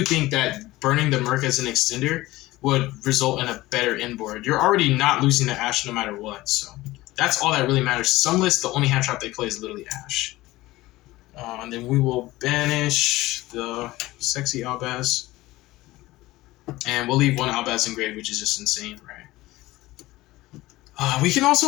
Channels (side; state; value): right; quieter; 18.3 dB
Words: think that burning the Merc as an extender would result in a better inboard. You're already not losing the Ash no matter what, so that's all that really matters. Some lists, the only hand trap they play is literally Ash. And then we will banish the sexy Albaz. And we'll leave one Albaz engraved, which is just insane, right? We can